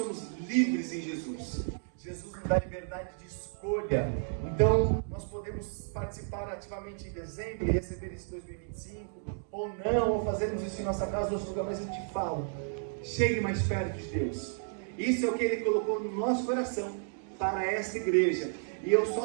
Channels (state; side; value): silent; left; digital silence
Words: livres em Jesus. Jesus nos dá liberdade de escolha. Então nós podemos participar ativamente em dezembro e receber esse 2025, ou não, ou fazermos isso em nossa casa ou outro lugar. Mas eu te falo, chegue mais perto de Deus. Isso é o que Ele colocou no nosso coração para esta igreja. E eu